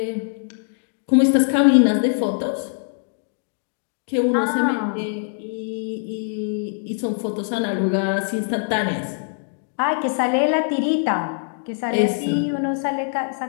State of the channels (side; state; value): right; silent; digital silence